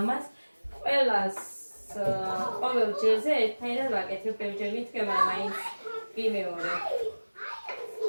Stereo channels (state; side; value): inverted; both; correlation -1.00